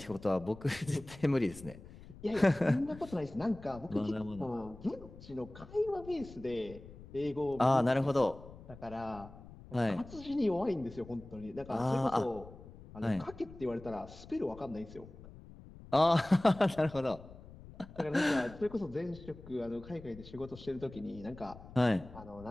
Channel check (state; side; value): noise; left; rumble, 17 dB below the sound